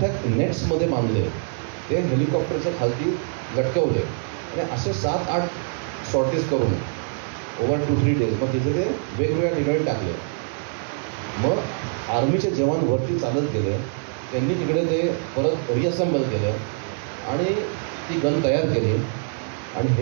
नेट्समध्ये बांधले, ते हेलिकॉप्टरच्या खालती लटकवले आणि असे 7-8 सॉर्टीज करून ओव्हर 2-3 डेज मग तिथे ते वेगवेगळ्या ठिकाणी टाकले. मग आर्मीचे जवान वरती चालत गेले, त्यांनी तिकडे ते परत रिअसेंबल केलं आणि ती गन तयार केली. आणि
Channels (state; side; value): silent; left; 63 dB below the other